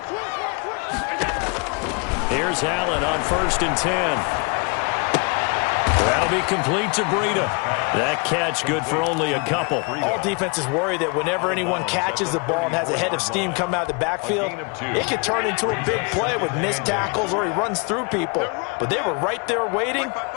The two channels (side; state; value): right; quieter; 32.7 dB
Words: Here's Allen on 1st and 10. That'll be complete to Breida. That catch good for only a couple. All defenses worry that whenever anyone catches the ball and has a head of steam come out of the backfield, it could turn into a big play with missed tackles or he runs through people. But they were right there waiting,